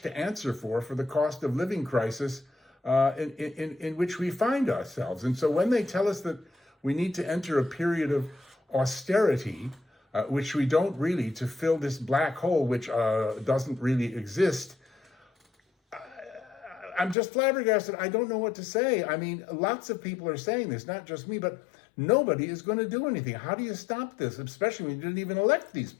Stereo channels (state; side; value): drops out; right; at 17.2 s